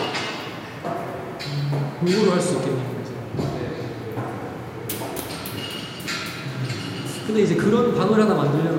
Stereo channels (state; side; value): identical; both; correlation 1.00